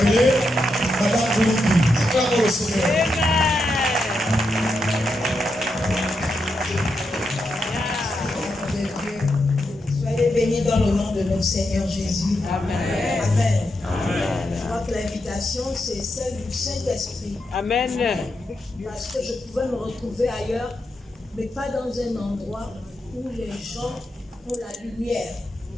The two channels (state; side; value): normal; both; correlation 0.84